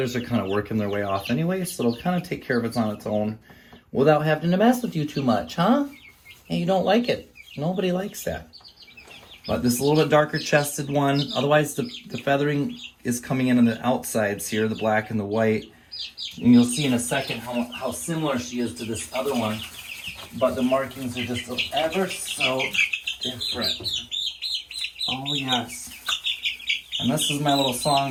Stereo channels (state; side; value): identical; both; correlation 1.00